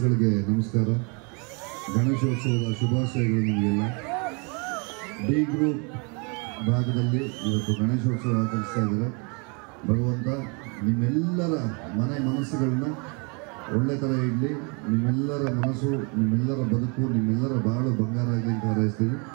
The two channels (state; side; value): quieter; left; 33.6 dB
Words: ನಮಸ್ಕಾರ. ಗಣೇಶೋತ್ಸವದ ಶುಭಾಶಯಗಳು ನಿಮಗೆಲ್ಲ. ಡಿ ಗ್ರೂಪ್ ಭಾಗದಲ್ಲಿ ಇವತ್ತು ಗಣೇಶೋತ್ಸವ ಆಚರಿಸ್ತಾ ಇದ್ದಾರೆ. ಭಗವಂತ ನಿಮ್ಮೆಲ್ಲರ ಮನಸ್ಸುಗಳನ್ನ ಒಳ್ಳೆ ಥರ ಇಡಲಿ. ನಿಮ್ಮೆಲ್ಲರ ಮನಸ್ಸು, ನಿಮ್ಮೆಲ್ಲರ ಬದುಕು, ನಿಮ್ಮೆಲ್ಲರ ಬಾಳು ಬಂಗಾರ ಆಗಲಿ ಅಂತ ಹಾರೈಸ್ತೀವಿ.